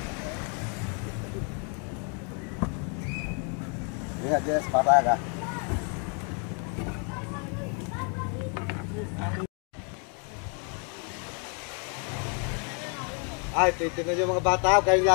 Lihat dia sepatah kah? Ay, titignan nyo mga bata, kayo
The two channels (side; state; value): right; quieter; 39.1 dB